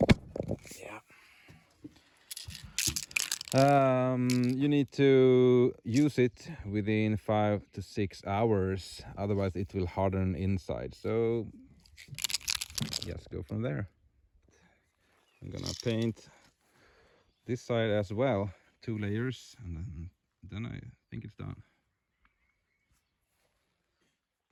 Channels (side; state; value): both; identical; correlation 1.00